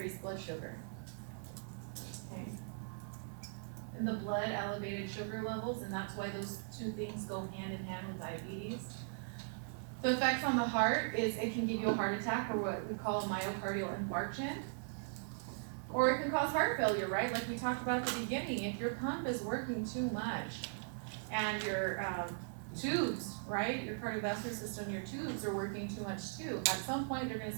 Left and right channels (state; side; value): silent; left; 52 dB below the other